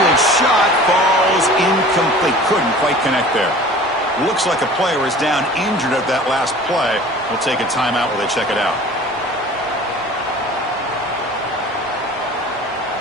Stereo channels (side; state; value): both; normal; correlation 0.43